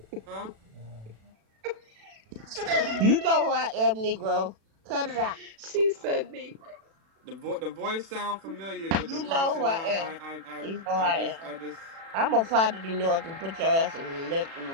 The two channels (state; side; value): late; left; 36 ms